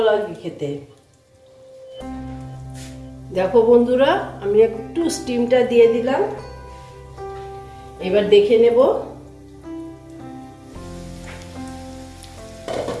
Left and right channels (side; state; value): both; identical; correlation 1.00